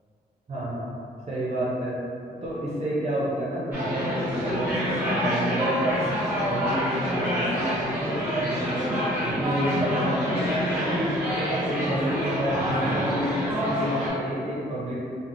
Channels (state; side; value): normal; both; correlation 0.53